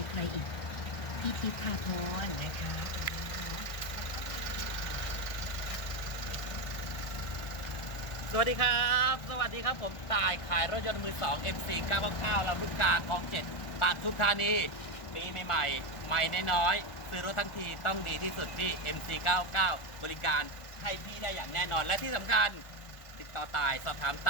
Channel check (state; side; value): late; right; 1.4 ms